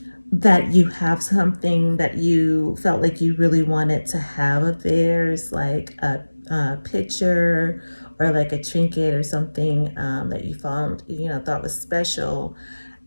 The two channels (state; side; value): inverted; both; correlation -1.00